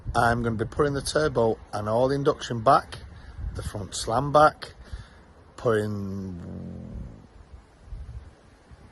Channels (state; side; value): identical; both; correlation 1.00